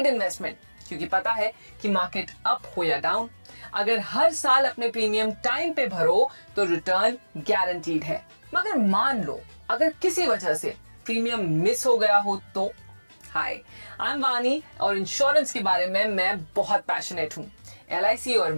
इन्वेस्टमेंट, क्योंकि पता है कि मार्केट अप हो या डाउन, अगर हर साल अपने प्रीमियम टाइम पे भरो तो रिटर्न गारंटीड है। मगर मान लो अगर किसी वजह से प्रीमियम मिस हो गया हो तो? हाय, आई एम वानी और इंश्योरेंस के बारे में मैं बहुत पैशनेट हूँ। LIC और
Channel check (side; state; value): both; inverted; correlation -1.00